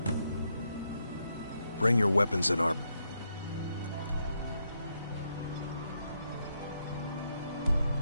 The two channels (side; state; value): both; inverted; correlation -0.79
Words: Bring your weapons and armor.